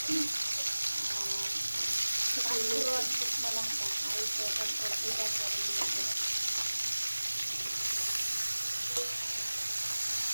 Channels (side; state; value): both; inverted; correlation -1.00